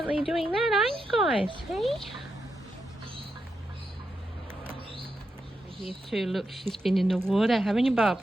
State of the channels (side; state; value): both; normal; correlation 0.85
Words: doing that, aren't you guys? Hey? Here too, look, she's been in the water, haven't you, Bob?